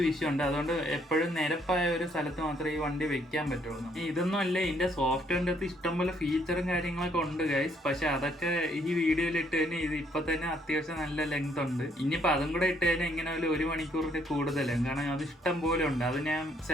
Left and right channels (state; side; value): normal; both; correlation 0.69